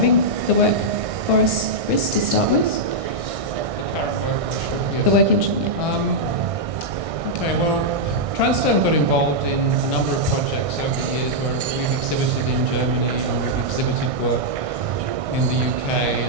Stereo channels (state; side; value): late; left; 1.6 ms